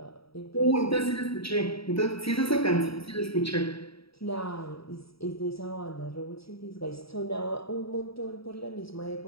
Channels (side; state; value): right; late; 0.76 ms